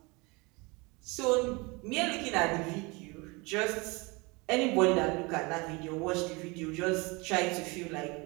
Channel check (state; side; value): quieter; left; 26.7 dB